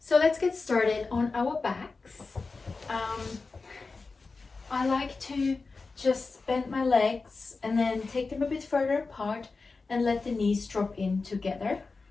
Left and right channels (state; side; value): quieter; right; 4.1 dB